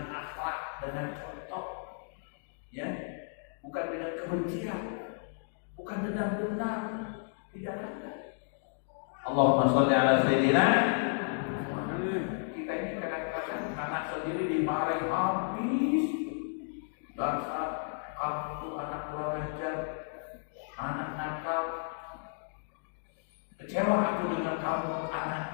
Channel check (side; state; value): right; silent; digital silence